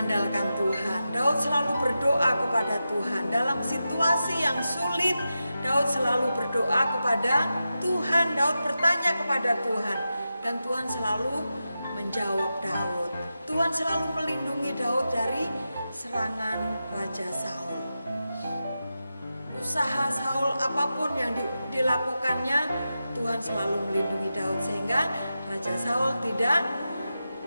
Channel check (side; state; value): both; inverted; correlation -0.91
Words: Tuhan. Daud selalu berdoa kepada Tuhan. Dalam situasi yang sulit, Daud selalu berdoa kepada Tuhan. Daud bertanya kepada Tuhan dan Tuhan selalu menjawab Daud. Tuhan selalu melindungi Daud dari serangan Raja Saul. Usaha Saul apapun yang dilakukannya, Tuhan selalu melindungi Daud sehingga Raja Saul tidak